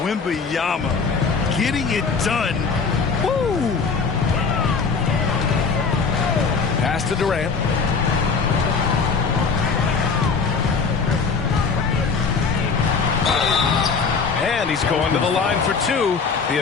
Wembanyama getting it done. Woo! Pass to Durant. And he's going to the line for 2. The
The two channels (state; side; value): quieter; right; 5.1 dB